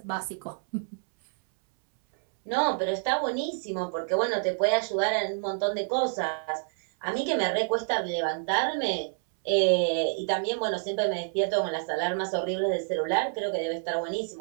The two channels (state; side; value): silent; left; 59 dB below the other